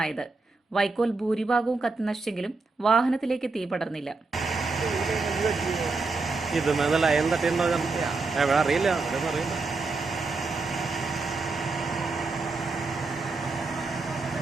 വൈക്കോൽ ഭൂരിഭാഗവും കത്തി നശിച്ചെങ്കിലും വാഹനത്തിലേക്ക് തീ പടർന്നില്ല. ഇത് ലൈൻ തട്ടിയുണ്ടോ അറിയില്ല.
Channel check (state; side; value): quieter; left; 3.8 dB